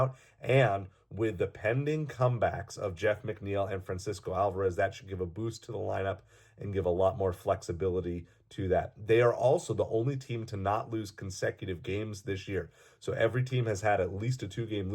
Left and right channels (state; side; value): identical; both; correlation 1.00